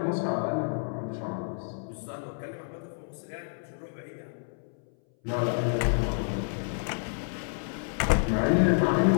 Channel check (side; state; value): right; silent; 58 dB below the other